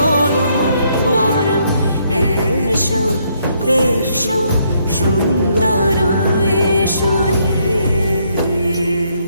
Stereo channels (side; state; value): both; inverted; correlation -0.71